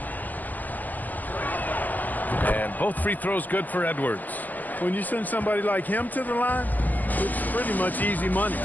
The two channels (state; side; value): late; right; 0.083 ms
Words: And both free throws good for Edwards. When you send somebody like him to the line, it's pretty much easy money.